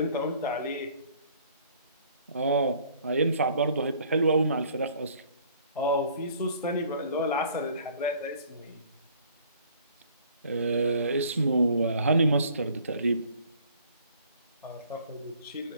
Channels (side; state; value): both; inverted; correlation -0.56